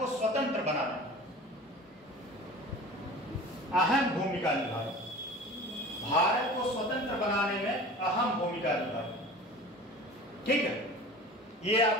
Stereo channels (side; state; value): both; normal; correlation 0.39